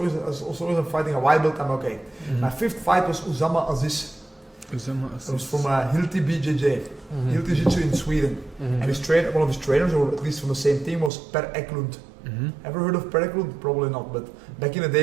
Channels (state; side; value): drops out; left; at 11.1 s